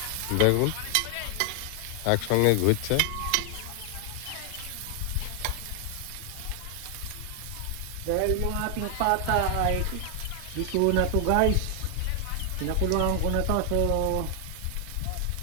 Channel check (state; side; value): different; both; correlation 0.00